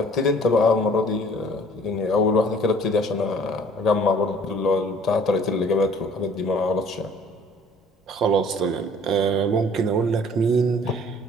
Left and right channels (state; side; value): normal; both; correlation 0.54